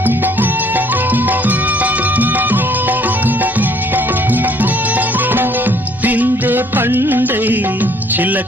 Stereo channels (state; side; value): normal; both; correlation 0.61